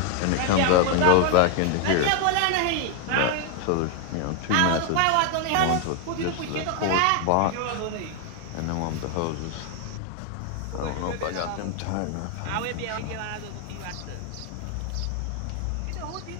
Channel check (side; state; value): both; different; correlation 0.00